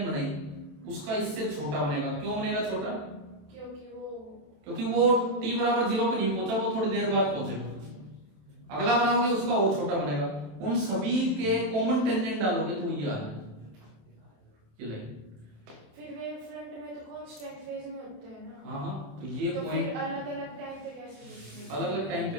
बनाई, उसका इससे छोटा बनेगा। क्यों बनेगा छोटा? क्योंकि वो t बराबर 0 पे नहीं पहुंचा, वो थोड़ी देर बाद पहुंचेगा। अगला बनाओगे उसका और छोटा बनेगा। उन सभी के कॉमन टेंजेंट डालोगे तो ये आ जाए ये लाइन। फिर वेव फ्रंट में तो कांस्टेंट फेज में होते हैं ना। हाँ, तो ये पॉइंट अलग-अलग टाइम पे कैसे? अलग-अलग टाइम पे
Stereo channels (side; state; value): left; late; 27 ms